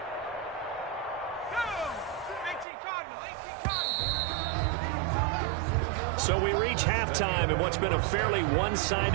So we reach halftime in what's been a fairly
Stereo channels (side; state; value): left; drops out; at 2.7 s